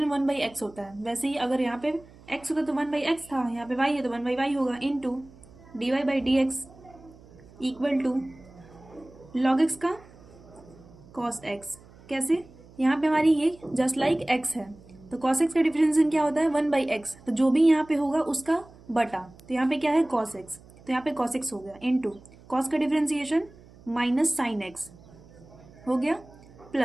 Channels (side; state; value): right; noise; hum, 23 dB below the sound